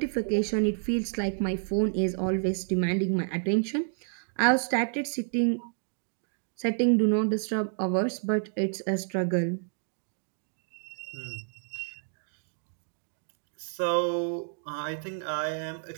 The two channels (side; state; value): left; silent; 58 dB below the other